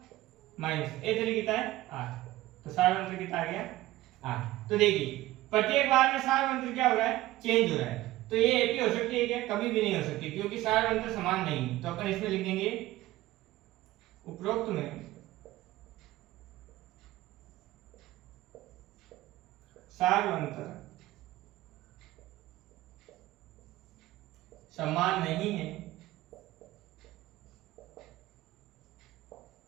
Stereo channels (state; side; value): quieter; left; 16.7 dB